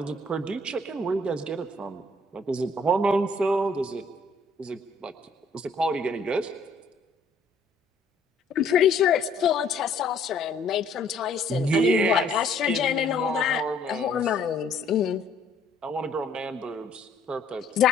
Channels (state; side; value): quieter; right; 3.0 dB